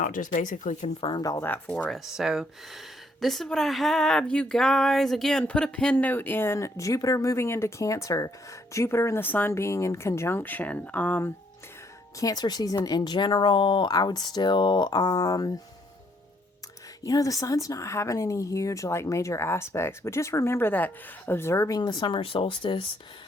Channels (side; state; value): both; normal; correlation 0.69